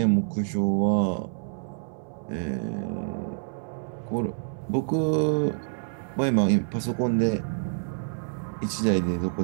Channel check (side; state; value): left; silent; 60 dB below the other